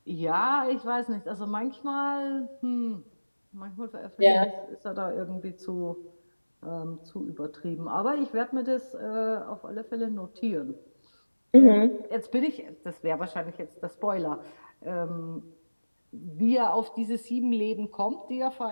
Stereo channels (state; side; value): inverted; both; correlation -1.00